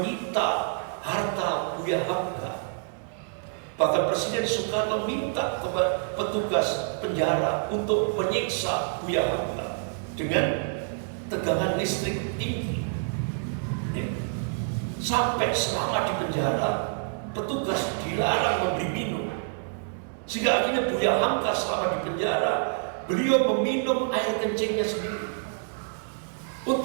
harta Buya Hamka. Bahkan Presiden Soekarno minta kepada petugas penjara untuk menyiksa Buya Hamka dengan tegangan listrik tinggi. Sampai selama di penjara, petugas dilarang memberi minum. Sehingga akhirnya Buya Hamka selama di penjara, beliau meminum air kencingnya sendiri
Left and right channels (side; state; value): left; silent; digital silence